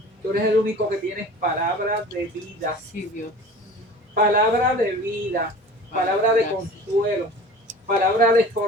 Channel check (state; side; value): normal; both; correlation 0.40